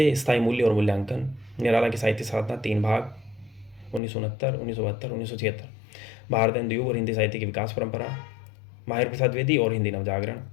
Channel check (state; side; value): drops out; right; at 4.0 s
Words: स्थायी मूल्य और मूल्यांकन, निराला की साहित्य साधना 3 भाग 1969, 1972, 1976, भारतेंदु युग और हिंदी साहित्य की विकास परंपरा, महावीर प्रसाद द्विवेदी और हिंदी नवजागरण,